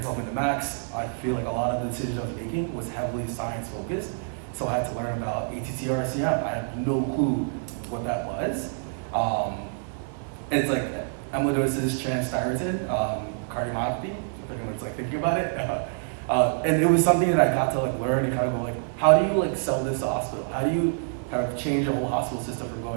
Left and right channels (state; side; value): silent; left; 60 dB below the other